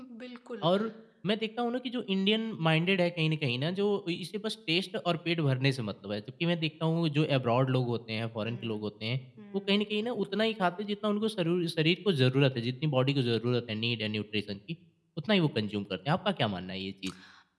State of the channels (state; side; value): identical; both; correlation 1.00